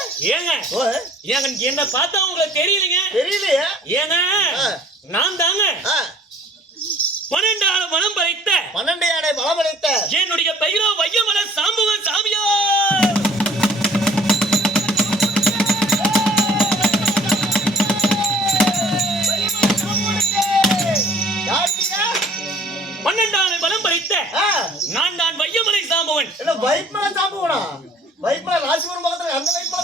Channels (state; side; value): normal; both; correlation 0.53